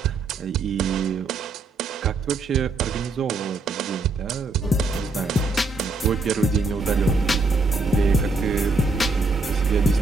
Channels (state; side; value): quieter; left; 3.5 dB